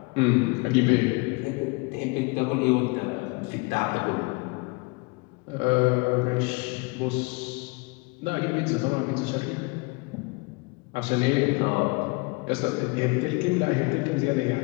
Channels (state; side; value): quieter; right; 28.5 dB